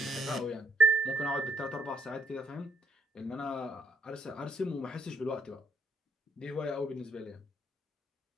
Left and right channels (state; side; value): normal; both; correlation 0.69